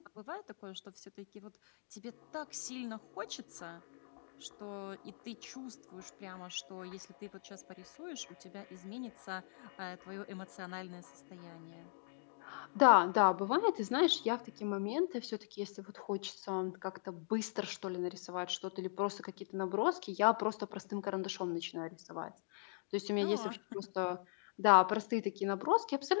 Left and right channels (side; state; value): right; silent; digital silence